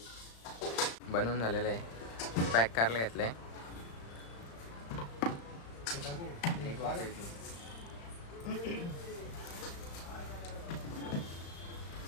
बनवून झालेलं आहे पॅक करायला घेतलंय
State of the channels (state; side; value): late; right; 35 ms